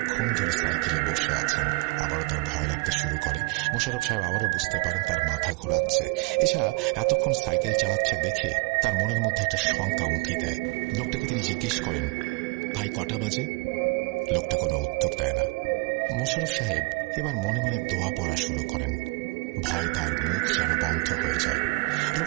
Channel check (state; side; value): quieter; left; 26.0 dB